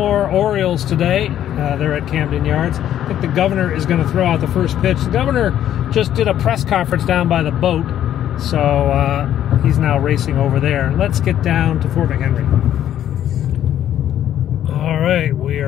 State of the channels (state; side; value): quieter; right; 11.1 dB